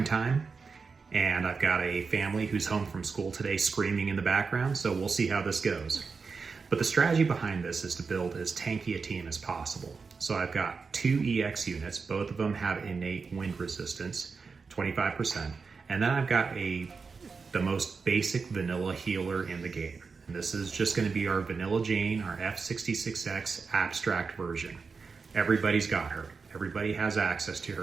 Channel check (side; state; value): left; quieter; 4.9 dB